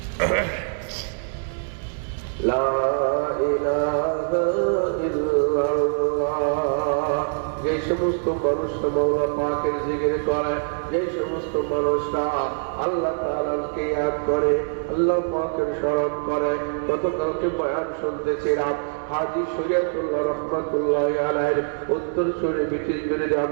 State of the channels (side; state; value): left; silent; 61 dB below the other